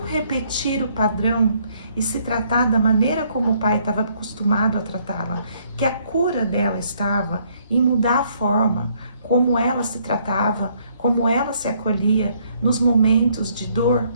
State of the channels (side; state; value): both; inverted; correlation -0.67